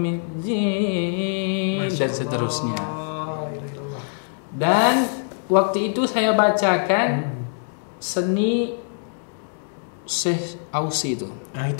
dan seterusnya. Dan waktu itu saya bacakan seni Syekh Ausi itu. Nah,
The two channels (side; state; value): right; silent; digital silence